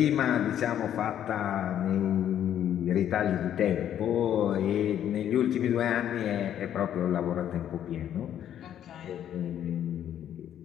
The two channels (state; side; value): quieter; right; 10.4 dB